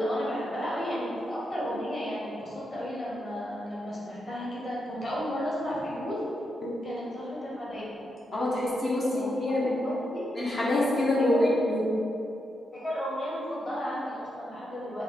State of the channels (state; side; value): normal; both; correlation 0.83